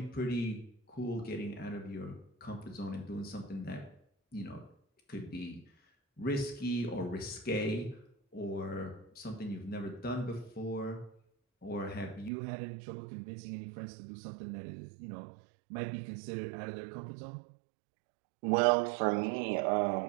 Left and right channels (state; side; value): drops out; left; at 12.3 s